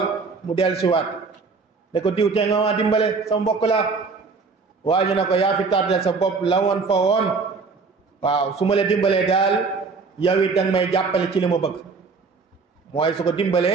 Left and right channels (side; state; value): left; quieter; 4.6 dB